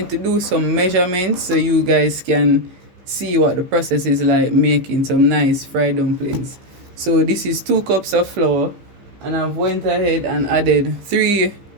to do some measurements so you guys can see what the process is like making some nice fried dumplings. So this is 2 cups of flour, and I've went ahead and added 3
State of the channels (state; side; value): late; left; 15 ms